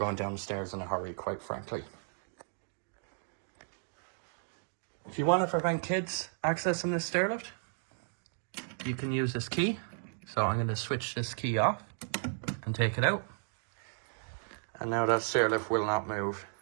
down the stairs in a hurry, quite frankly. If you want to prevent kids accessing this stair lift, you can use this key. So I'm going to switch this key off and take it out. And now that stair lift will not move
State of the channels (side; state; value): left; silent; digital silence